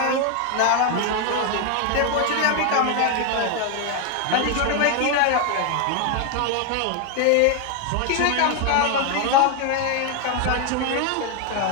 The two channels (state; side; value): different; both; correlation 0.01